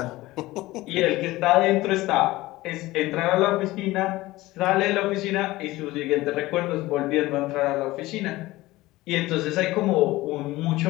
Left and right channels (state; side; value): quieter; right; 18.5 dB